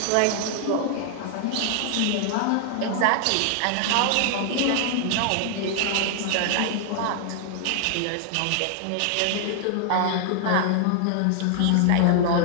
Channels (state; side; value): different; both; correlation 0.00